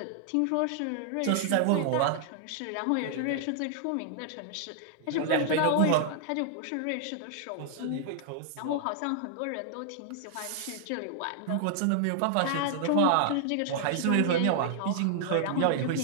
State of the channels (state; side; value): different; both; correlation -0.01